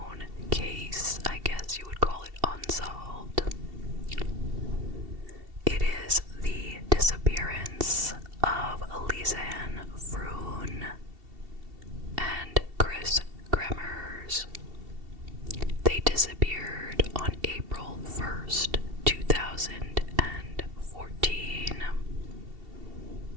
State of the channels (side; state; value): left; late; 2.7 ms